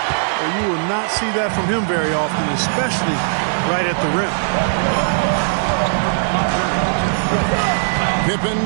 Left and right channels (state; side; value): silent; left; 67 dB below the other